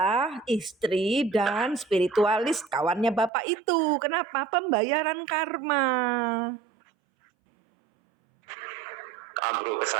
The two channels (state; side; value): drops out; left; at 3.3 s